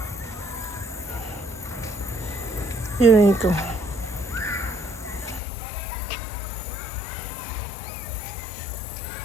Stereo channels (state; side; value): drops out; right; at 5.4 s